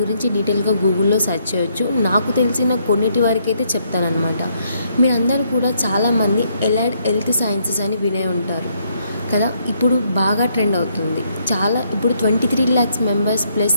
గురించి డీటెయిల్గా గూగుల్లో సెర్చ్ చేయొచ్చు. నాకు తెలిసిన కొన్నిటి వరకు అయితే చెప్తానమాట. మీరందరూ కూడా చాలామంది ఎలైడ్ హెల్త్ సైన్సెస్ అని వినే ఉంటారు కదా. ఇప్పుడు బాగా ట్రెండ్ అవుతుంది. ఇప్పుడు 23 lakhs మెంబర్స్ ప్లస్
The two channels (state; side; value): inverted; both; correlation -0.72